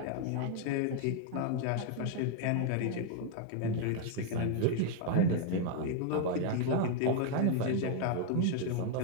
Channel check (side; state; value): both; different; correlation 0.00